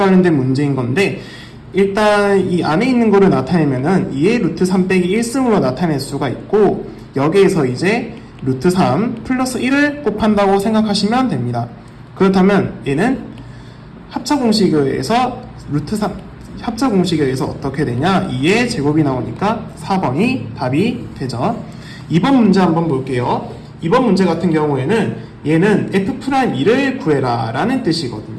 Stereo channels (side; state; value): both; identical; correlation 1.00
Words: 문제인 건데, 일단 이 안에 있는 거를 나타내면은 2의 루트 3 빼기 1승으로 나타낼 수가 있고, 여기에서 이제 루트 3 플러스 1을 곱한다고 생각하시면 됩니다. 그렇다면 얘는 합차공식에서 루트 3 합차공식에 의해서 어떻게 되냐, 2의 제곱이 나오니까 4번이 답이 되죠. 2번 문제 한번 볼게요. 2번 문제 같은 경우에는 얘는 F'2를 구해라 라는